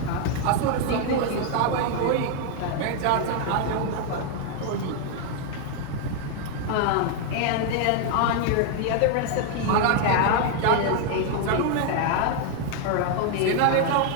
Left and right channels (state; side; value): different; both; correlation 0.00